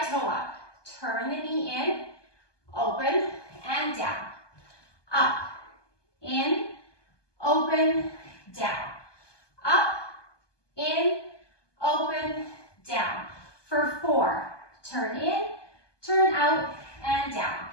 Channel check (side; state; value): right; late; 1.2 ms